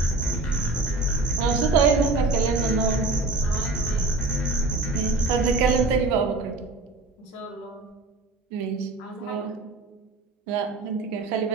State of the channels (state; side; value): quieter; left; 3.1 dB